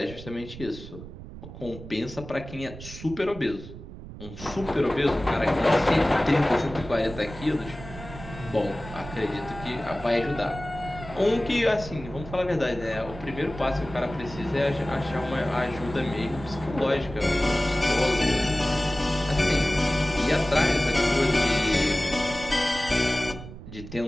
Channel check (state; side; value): noise; right; rumble, 13 dB below the sound